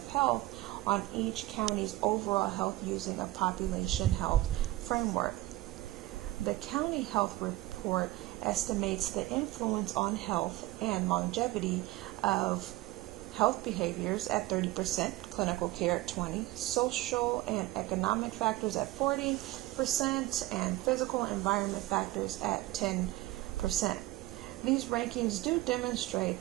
health on each county's overall health using a population health framework. The County Health Report estimates the influence on health and longevity of health behaviors at 30%, clinical care at 20%, social and economic factors at 40%, and physical environment factors at 10%. These rankings do demonstrate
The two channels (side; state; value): left; quieter; 17.9 dB